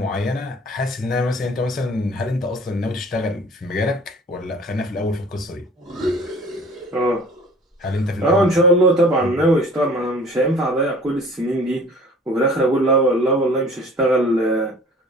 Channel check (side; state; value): both; normal; correlation 0.48